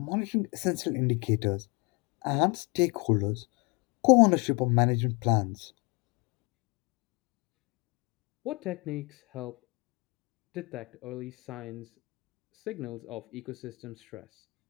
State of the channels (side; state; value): right; quieter; 28.4 dB